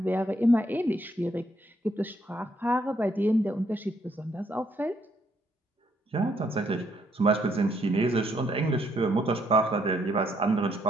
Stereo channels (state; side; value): normal; both; correlation 0.72